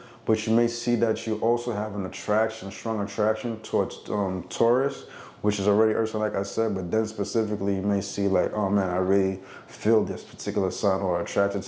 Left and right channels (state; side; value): identical; both; correlation 1.00